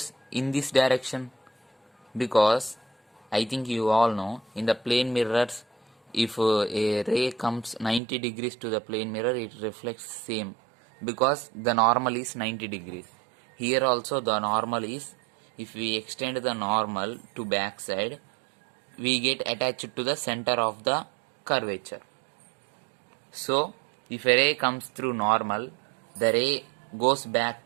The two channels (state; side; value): drops out; left; at 8.0 s